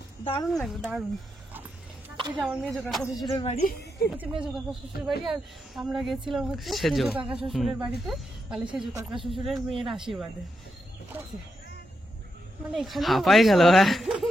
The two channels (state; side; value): normal; both; correlation 0.84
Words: দারুণ লাগবে, দারুণ। এই যে আমার মেজো কাকা শ্বশুরের বাড়ি, হচ্ছে মেজো কাকা শ্বশুরের বাড়ি, আর আমরা গেছিলাম হচ্ছে সেজো। সেজো কাকা শ্বশুরের বাড়িতে, মানে সেজো কাকা শ্বশুরের মেয়ের আশীর্বাদে। ঠিক আছে, মানে এখানে হাঁপাই গেল। হ্যাঁ